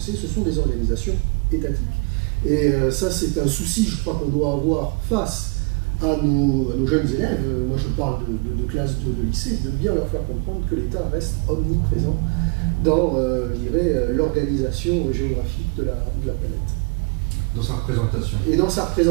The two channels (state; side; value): quieter; left; 29.2 dB